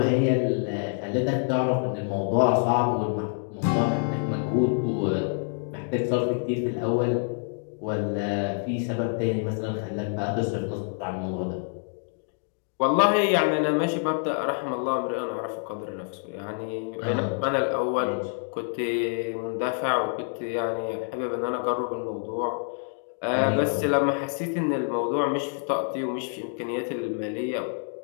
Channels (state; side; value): silent; right; 60 dB below the other